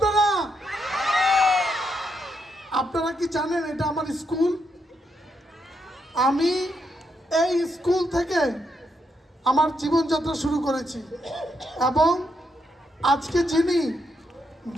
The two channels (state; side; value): normal; both; correlation 0.80